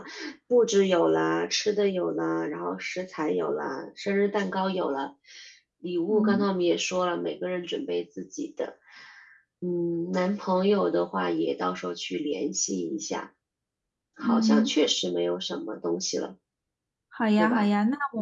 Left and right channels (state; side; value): identical; both; correlation 1.00